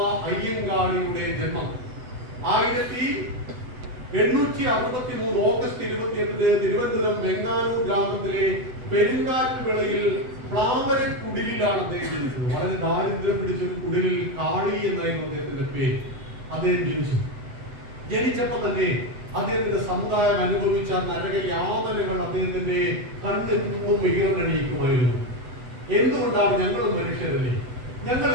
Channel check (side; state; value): left; late; 8.0 ms